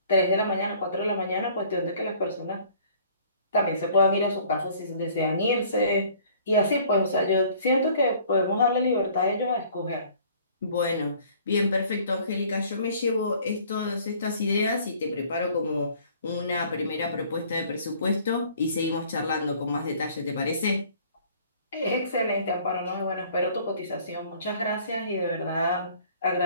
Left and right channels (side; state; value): both; inverted; correlation -0.54